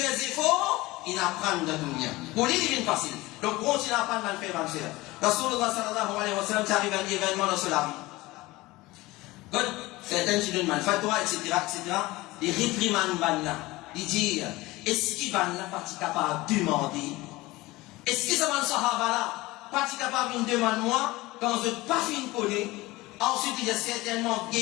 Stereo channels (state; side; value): quieter; right; 20.1 dB